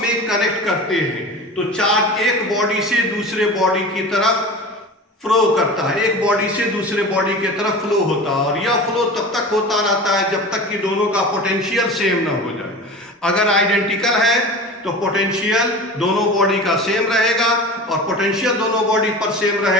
कनेक्ट करते हैं तो चार्ज एक बॉडी से दूसरे बॉडी की तरफ फ्लो करता है, एक बॉडी से दूसरे बॉडी की तरफ फ्लो होता है, और यह फ्लो तब तक होता रहता है जब तक कि दोनों का पोटेंशियल सेम ना हो जाए। अगर आइडेंटिकल है तो पोटेंशियल दोनों बॉडी का सेम रहेगा, और पोटेंशियल दोनों बॉडी पर सेम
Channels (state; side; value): normal; both; correlation 0.34